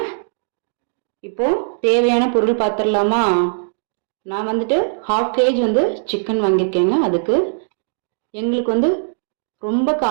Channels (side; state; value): left; silent; digital silence